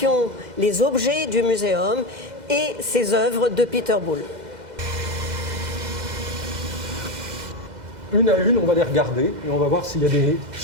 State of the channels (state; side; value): late; left; 2.0 ms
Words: les objets du muséum et ces œuvres de Peter Boulle. Une à une, on va les regarder et on va voir s'il y a des